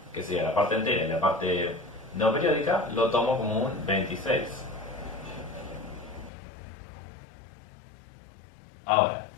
que sería la parte entera y la parte no periódica, lo tomo como un 26. Ahora,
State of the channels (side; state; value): right; drops out; at 6.3 s